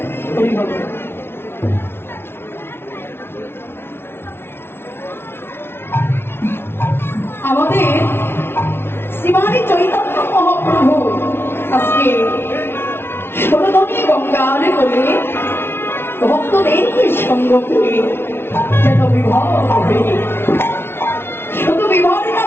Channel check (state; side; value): late; right; 0.11 ms